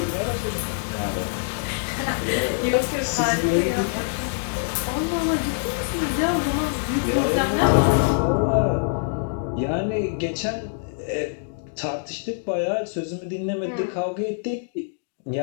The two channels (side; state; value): right; silent; digital silence